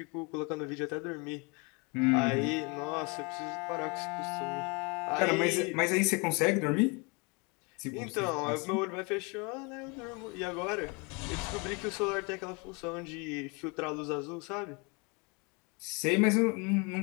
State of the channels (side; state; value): right; quieter; 30.6 dB